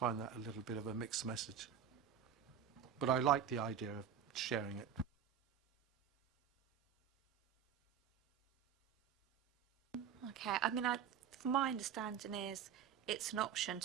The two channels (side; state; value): left; quieter; 8.1 dB